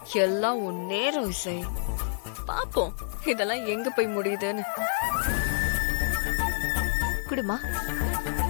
எல்லாம் உன் நேரம் இசை. பாப்போம் இதெல்லாம் எங்க போய் முடியுதுன்னு. குடுமா.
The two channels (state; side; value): silent; right; digital silence